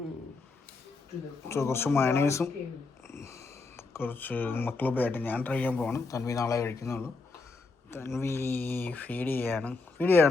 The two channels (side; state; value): right; quieter; 4.0 dB